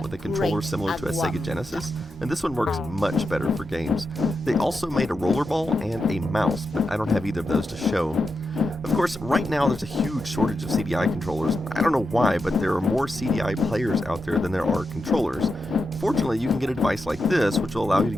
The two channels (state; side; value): normal; both; correlation 0.88